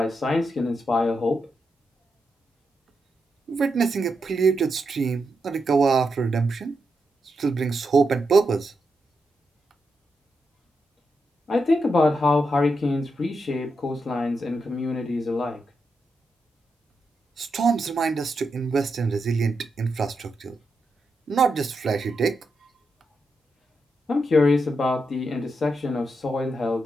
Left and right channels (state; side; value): normal; both; correlation 0.84